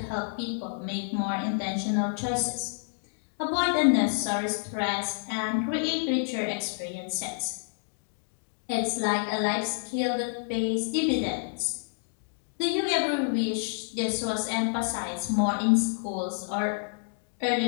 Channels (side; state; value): right; silent; digital silence